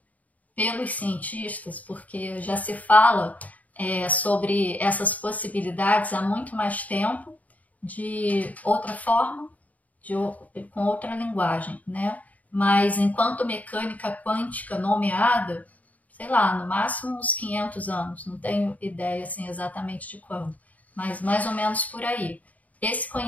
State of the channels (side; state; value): right; late; 0.073 ms